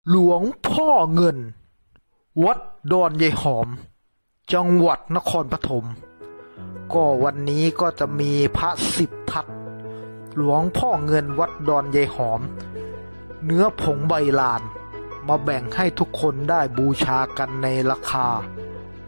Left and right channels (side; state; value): both; inverted; correlation -1.00